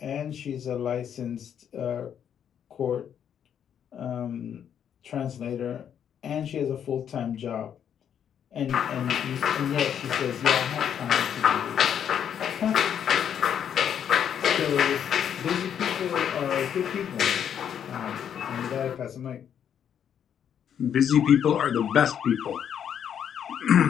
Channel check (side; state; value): right; quieter; 8.8 dB